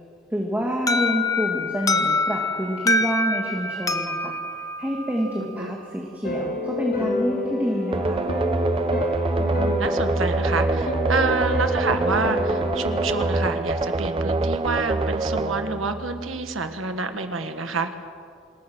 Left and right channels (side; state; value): both; normal; correlation 0.55